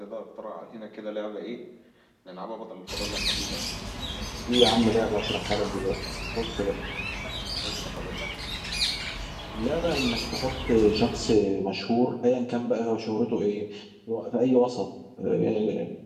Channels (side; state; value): both; identical; correlation 1.00